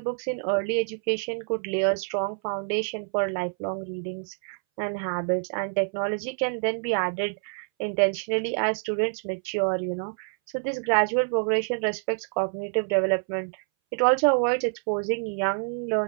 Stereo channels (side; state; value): left; silent; 60 dB below the other